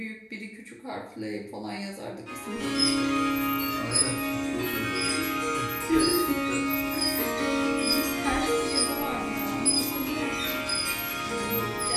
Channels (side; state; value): both; identical; correlation 1.00